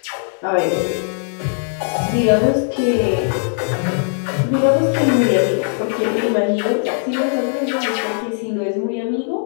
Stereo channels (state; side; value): silent; right; digital silence